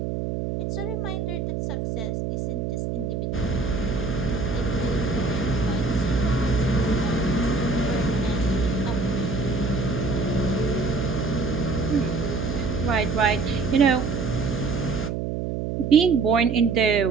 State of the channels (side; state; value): right; noise; hum, 2 dB below the sound